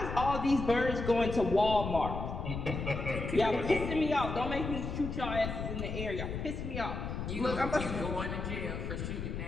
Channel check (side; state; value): left; noise; rumble, 5 dB below the sound